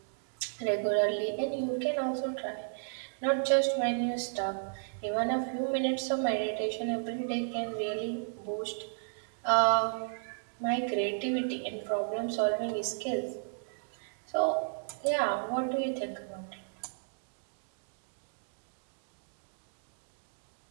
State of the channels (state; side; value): silent; left; digital silence